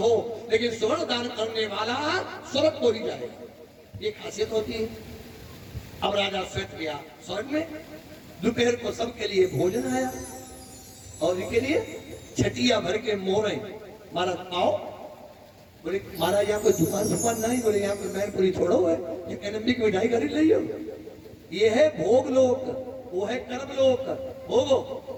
लेकिन स्वर्ण दान करने वाला स्वर्ग को ही जाएगा। ये खासियत होती है। अब राजा श्वेत गया स्वर्ग में, दोपहर को सबके लिए भोजन आया, और इनके लिए छटिया भर के मोहरे। महाराज आओ। बोले महाराज यहाँ कोई दुकान नहीं? बोले यहाँ कोई मैनपुरी थोड़ा है, ये एनएमडी की मिठाई खरीद लियो। ये है भोग लोक, वो है कर्म लोक। भोगो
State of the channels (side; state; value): both; identical; correlation 1.00